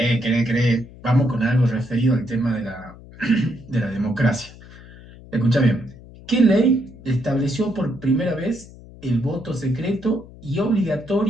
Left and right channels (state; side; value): noise; left; hum, 19 dB below the sound